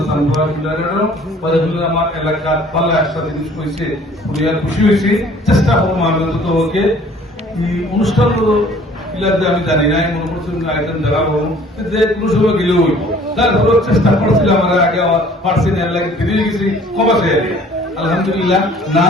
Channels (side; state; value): both; normal; correlation 0.53